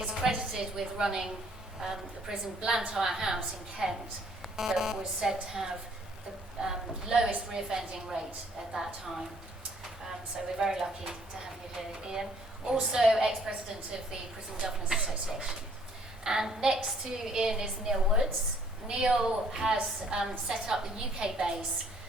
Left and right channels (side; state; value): both; normal; correlation 0.62